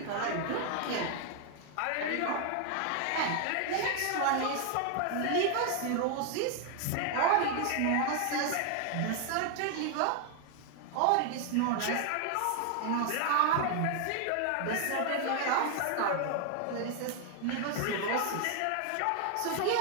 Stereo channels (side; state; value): both; different; correlation 0.00